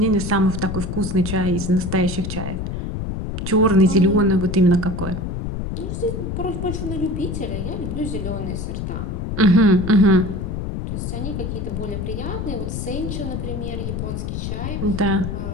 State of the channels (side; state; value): left; noise; rumble, 4 dB below the sound